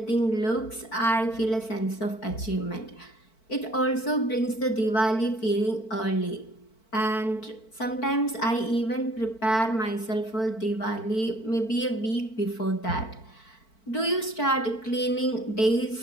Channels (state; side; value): late; right; 4.5 ms